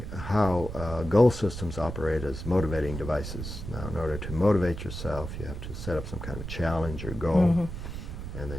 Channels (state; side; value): noise; right; rumble, 8 dB below the sound